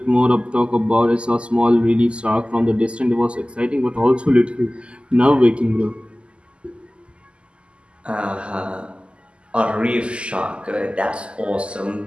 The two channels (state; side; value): late; left; 0.053 ms